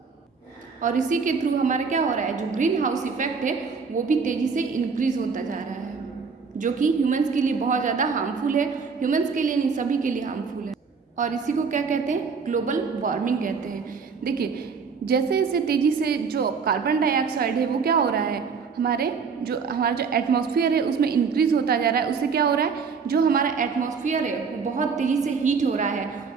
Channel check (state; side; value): quieter; left; 5.5 dB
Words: और इसी के थ्रू हमारा क्या हो रहा है, जो ग्रीन हाउस इफेक्ट है वो भी तेजी से इंक्रीज होता जा रहा है, जो कि ह्यूमंस के लिए बहुत ज़्यादा हार्मफुल है। ह्यूमंस के लिए नहीं, सभी के लिए हार्मफुल है। और इसी को क्या कहते हैं, ग्लोबल वार्मिंग कहते हैं। देखिए, जैसे जैसे तेज़ी से जो कार्बन डाइऑक्साइड है वो क्या हो रहा है, हमारा जो एटमॉस्फेयर है उसमें इंक्रीज होता जा रहा है। उससे क्या हो रहा है, जो हमारा एटमॉस्फेयर है वो बहुत तेज़ी से हीट हो रहा है,